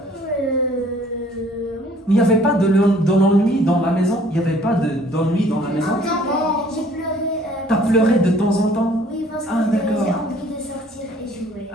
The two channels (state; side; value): normal; both; correlation 0.57